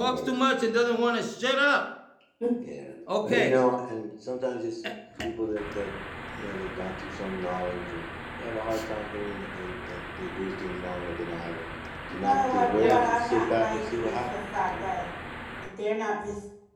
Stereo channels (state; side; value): identical; both; correlation 1.00